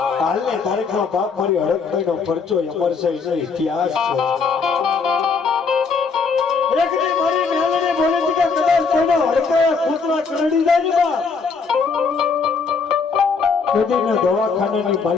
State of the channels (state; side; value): quieter; right; 5.0 dB